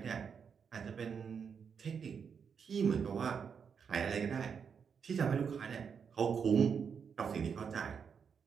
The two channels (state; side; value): quieter; left; 6.6 dB